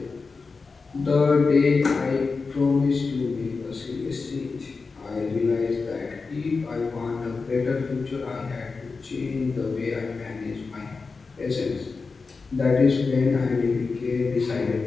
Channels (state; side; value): quieter; right; 4.4 dB